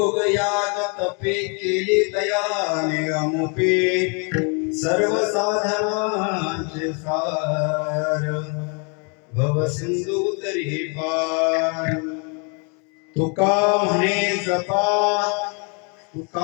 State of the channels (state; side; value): quieter; right; 36.5 dB